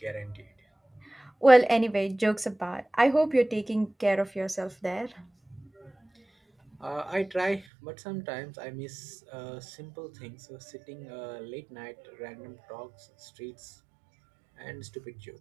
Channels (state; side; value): drops out; left; at 7.7 s